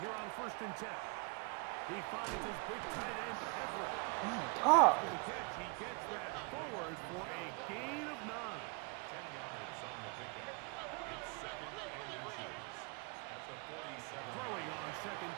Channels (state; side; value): quieter; left; 32.4 dB